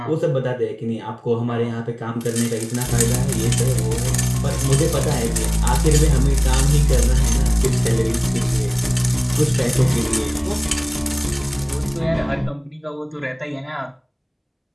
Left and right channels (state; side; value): identical; both; correlation 1.00